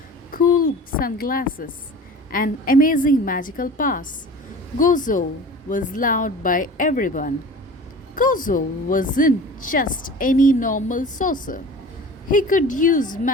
cool sunglasses, and amazing magical powers, Gozo was loved by everyone. Gozo wasn't just any normal sorcerer. He could use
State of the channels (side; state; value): both; normal; correlation 0.39